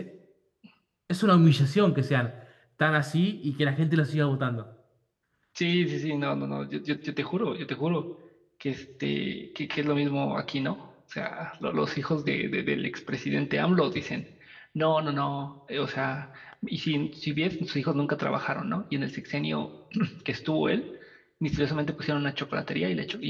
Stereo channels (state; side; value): identical; both; correlation 1.00